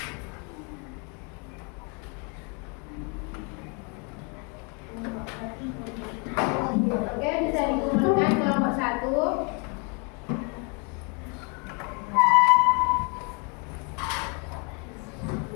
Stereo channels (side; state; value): right; quieter; 34.7 dB